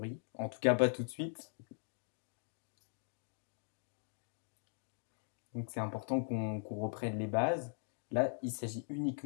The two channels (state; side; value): silent; right; digital silence